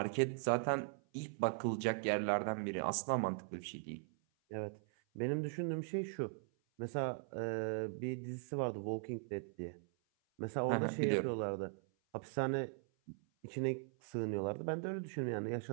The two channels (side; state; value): left; silent; 51 dB below the other